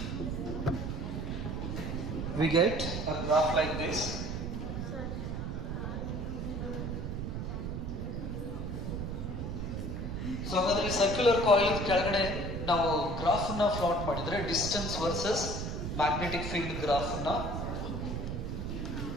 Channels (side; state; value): right; noise; rumble, 3 dB below the sound